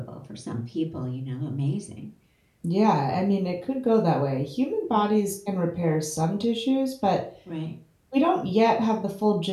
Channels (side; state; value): both; identical; correlation 1.00